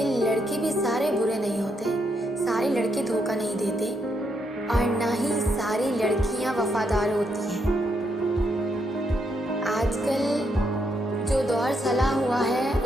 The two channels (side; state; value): both; normal; correlation 0.77